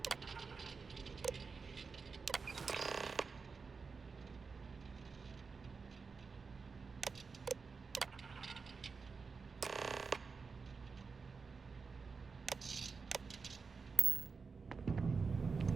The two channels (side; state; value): left; quieter; 4.9 dB